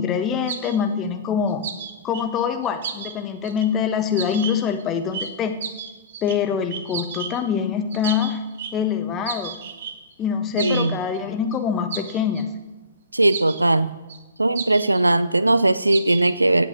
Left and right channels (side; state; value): both; inverted; correlation -0.44